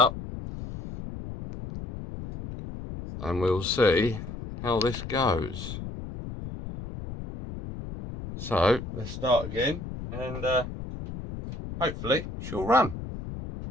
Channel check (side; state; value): left; noise; rumble, 9 dB below the sound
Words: and we'll see how this goes. So let's start again, and hopefully she'll run.